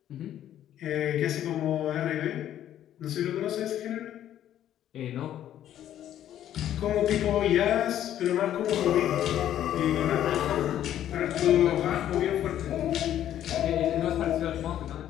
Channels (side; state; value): right; quieter; 11.4 dB